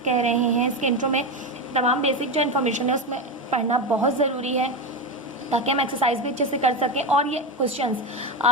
कह रहे हैं, इसके इंट्रो में तमाम बेसिक जो इन्फॉर्मेशन है उसमें पढ़ना बहुत ज़रूरी है ताकि हम एक्सरसाइज भी अच्छे से कर सकें और ये क्वेश्चंस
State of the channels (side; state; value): both; normal; correlation 0.15